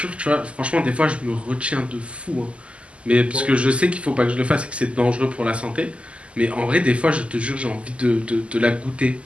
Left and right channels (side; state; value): left; late; 0.056 ms